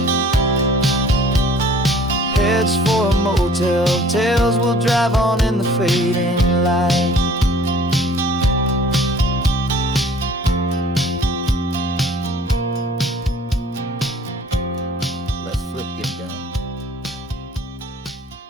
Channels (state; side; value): normal; both; correlation 0.52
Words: Heads for a motel, tails will drive on in the fading light. Let's flip get done.